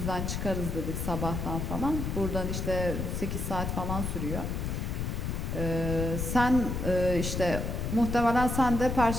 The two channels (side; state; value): left; noise; rumble, 2 dB below the sound